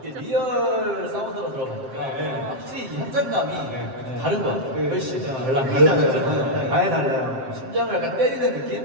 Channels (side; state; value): left; late; 7.6 ms